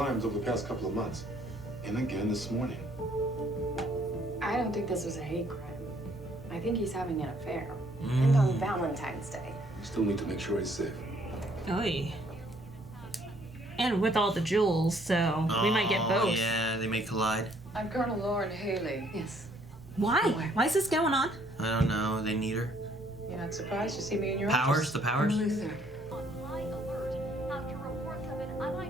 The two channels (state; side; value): normal; both; correlation 0.64